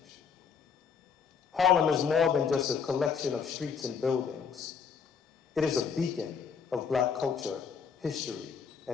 Harlem is more than just a collection of streets and buildings. It is a beacon of Black culture, history,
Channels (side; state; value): right; quieter; 6.4 dB